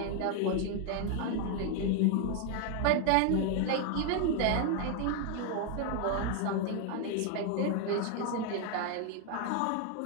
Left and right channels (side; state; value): both; different; correlation 0.00